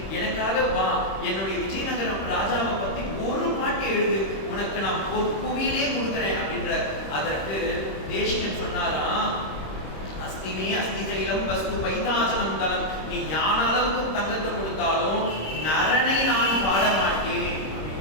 எனக்காக வா, என்னுடைய விஜயநகரம் ராஜாவை பத்தி ஒரு பாட்டு எழுது, உனக்கு நான் புவியிலே கொடுக்குறேன் அப்படின்ற. அதற்கு தேசிகன் சொன்னாராம், அஸ்திமே அஸ்தி சைலம் வஸ்து பைதாசனம் தலம், நீ ஞான அளவுக்கு தங்கத்தை கொடுத்தாலும் நரனை நான் பாட மாட்டேன்.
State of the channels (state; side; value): late; right; 26 ms